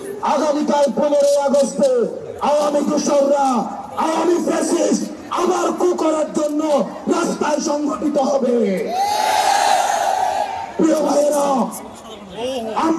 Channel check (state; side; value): identical; both; correlation 1.00